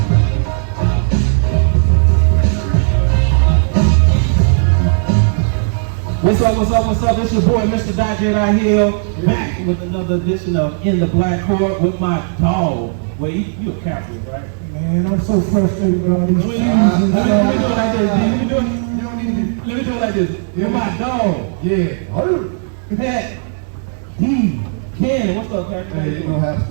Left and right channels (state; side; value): silent; left; digital silence